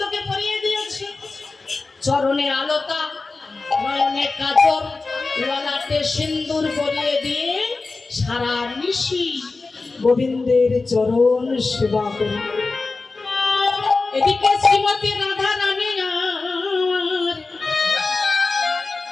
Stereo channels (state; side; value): quieter; right; 3.8 dB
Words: পরিয়ে দিয়েছে। চরণে আলতা, নয়নে কাজল, ললাটে সিন্দুর পরিয়ে দিয়ে সারা নিশি গোবিন্দের চরণ সেবা করে। এদিকে শ্রীমতী রাধা রানী